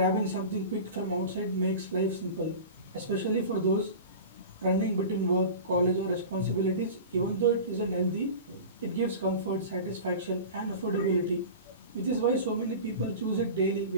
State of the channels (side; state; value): both; inverted; correlation -0.33